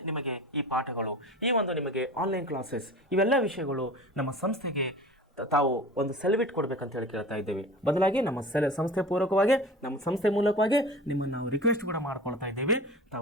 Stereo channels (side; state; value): both; normal; correlation 0.37